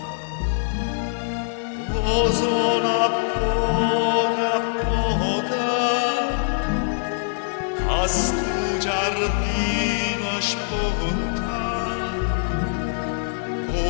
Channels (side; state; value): right; silent; 63 dB below the other